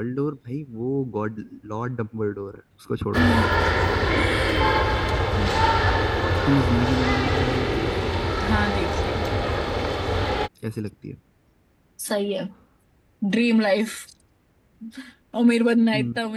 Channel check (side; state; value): both; identical; correlation 1.00